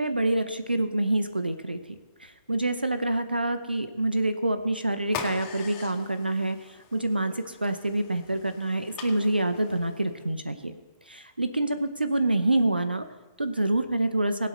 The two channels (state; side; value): inverted; both; correlation -0.87